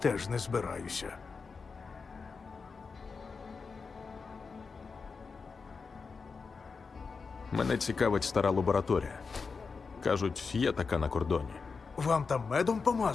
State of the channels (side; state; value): right; quieter; 4.9 dB